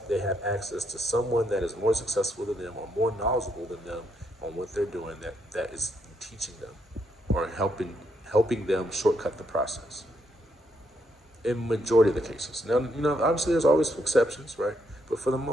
access to someone that is more successful than them or more knowledgeable than them on what they're doing, that is teaching them or helping them shortcut the process. In majority of the cases, now obviously there's always exceptions, right? But for the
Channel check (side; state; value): both; normal; correlation 0.77